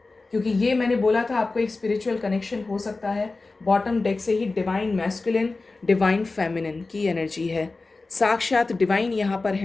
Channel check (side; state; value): right; quieter; 3.6 dB